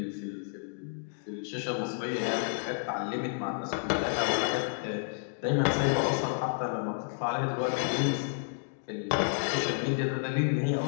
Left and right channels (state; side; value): silent; right; digital silence